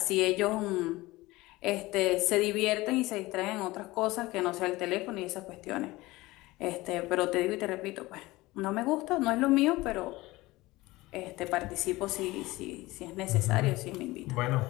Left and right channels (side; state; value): right; quieter; 19.9 dB